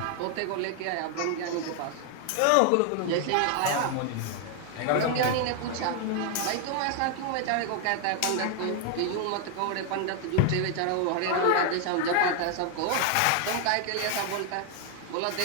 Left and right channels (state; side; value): different; both; correlation 0.00